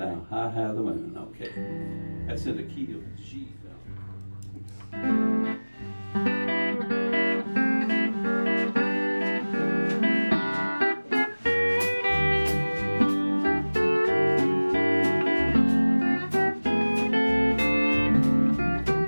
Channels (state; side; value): inverted; both; correlation -1.00